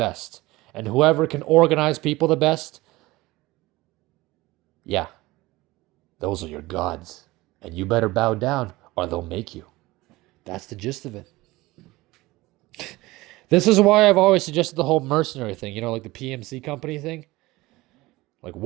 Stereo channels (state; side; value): quieter; left; 19.8 dB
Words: and whoever can organize people the best, yeah, those are your gods. And you better bow down or they'll make you. That's the gist of it. This is why I've always suggested the whole mercenary thing, like the PMC company thing. Like,